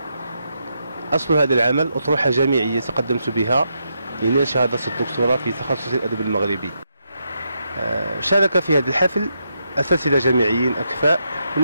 أصل هذا العمل أطروحة جامعية تقدمت بها لنيل شهادة الدكتوراه في تخصص الأدب المغربي. شارك في هذا الحفل أساتذة جامعيين أكفاء من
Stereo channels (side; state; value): both; inverted; correlation -0.82